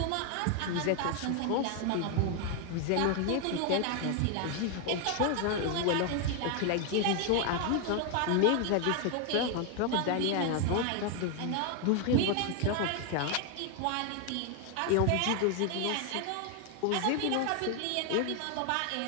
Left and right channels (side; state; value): both; different; correlation 0.01